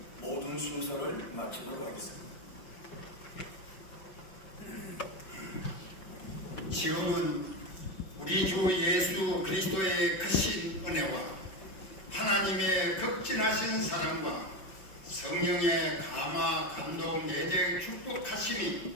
모든 순서를 마치도록 하겠습니다. 지금은 우리 주 예수 그리스도의 크신 은혜와 하나님의 극진하신 사랑과 성령의 감화 감동 내적 축복하심이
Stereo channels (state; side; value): late; right; 5.3 ms